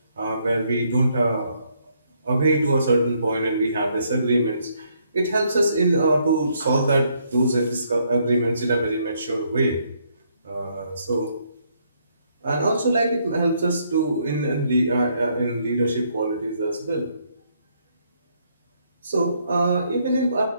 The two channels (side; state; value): both; inverted; correlation -0.72